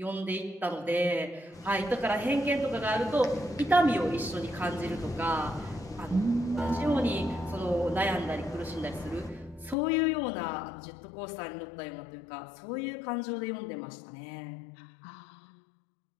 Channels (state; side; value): drops out; right; at 9.8 s